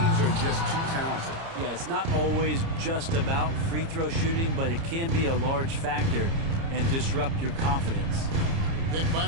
are just too talented. Yeah, it's not always just about free throw shooting, but it can be a large factor and disrupt your confidence. Picked by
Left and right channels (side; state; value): left; late; 30 ms